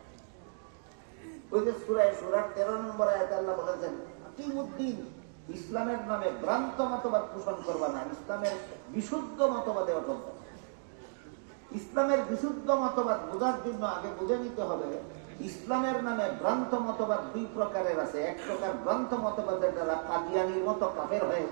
ওই যে সূরা 13 নম্বর আয়াতে আল্লাহ বলেছেন, কিমুদ্দিন, ইসলামের নামে ভ্রান্ত মতবাদ পোষণ করবা না, ইসলামের বিশুদ্ধ মতবাদে অটল। ইসলামের বিশুদ্ধ মতবাদ বোঝার জন্য আগে বুঝে নিতে হবে, ইসলামের নামে ভ্রান্ত মতবাদ দুই প্রকারের আছে। এক প্রকার ভ্রান্ত মতবাদের দ্বারা কাদিয়ানির মতো কাফের হয়ে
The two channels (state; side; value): silent; left; digital silence